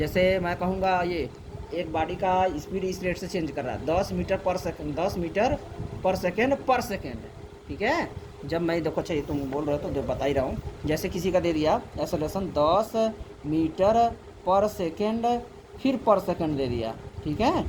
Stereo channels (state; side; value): identical; both; correlation 1.00